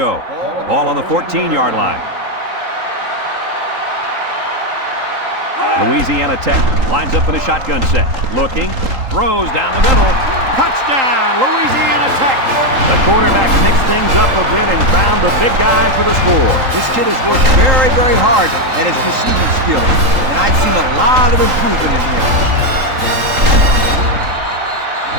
Ball on the 14-yard line. Louisiana Tech lines up in a shotgun set. Looking, throws down the middle. Touchdown, Louisiana Tech! The quarterback mixed things up a bit and found the big guy for the score. This kid has worked very, very hard at his receiving skills. And I've seen a lot of improvement in him.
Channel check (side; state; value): left; late; 3.8 ms